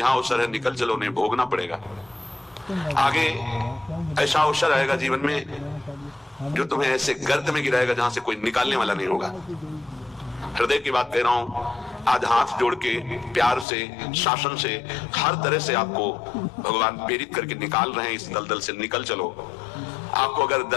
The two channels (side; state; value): right; drops out; at 13.7 s